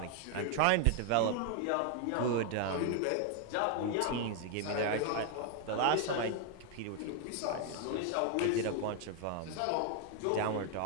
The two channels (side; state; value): both; different; correlation 0.00